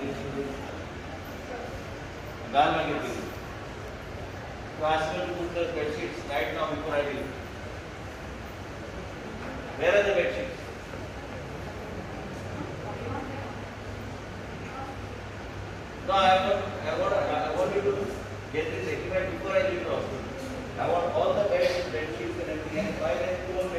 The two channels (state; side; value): identical; both; correlation 1.00